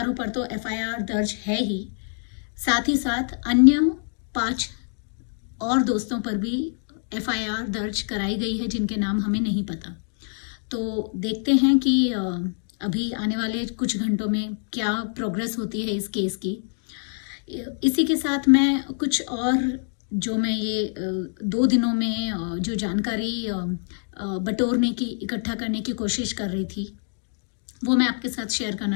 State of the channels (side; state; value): right; silent; 62 dB below the other